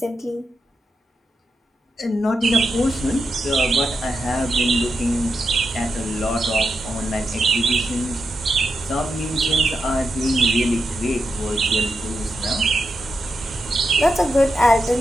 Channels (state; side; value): normal; both; correlation 0.86